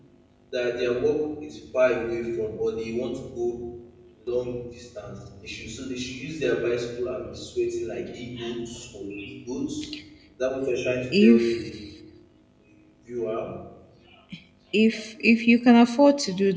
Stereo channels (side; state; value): both; identical; correlation 1.00